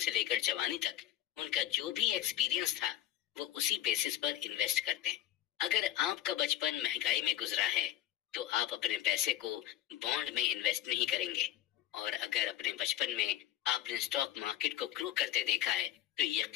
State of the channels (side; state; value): right; quieter; 12.7 dB